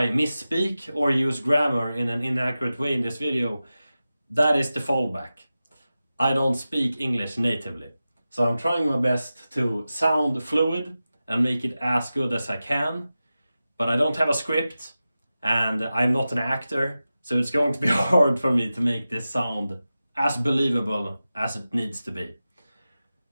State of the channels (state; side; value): inverted; both; correlation -0.94